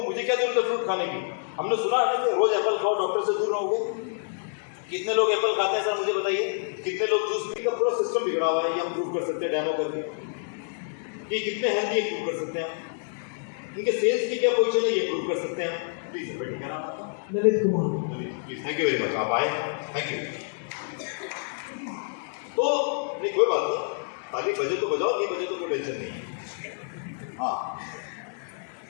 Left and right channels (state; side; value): silent; right; digital silence